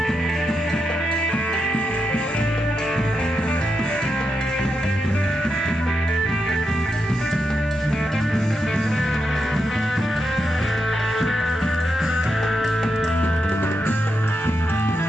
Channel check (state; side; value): normal; both; correlation 0.85